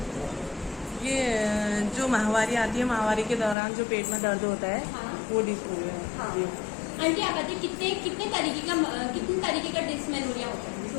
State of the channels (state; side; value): drops out; right; at 3.6 s